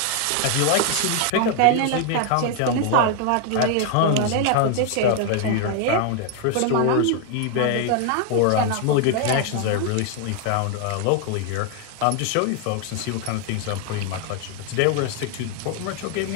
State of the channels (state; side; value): different; both; correlation 0.00